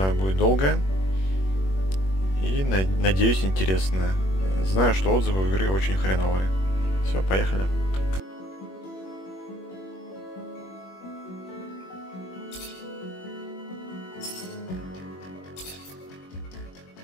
будет долгое. И надеюсь, интересное. Знаю, что отзывы у игры очень хреновые. Все, поехали.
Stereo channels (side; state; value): right; late; 21 ms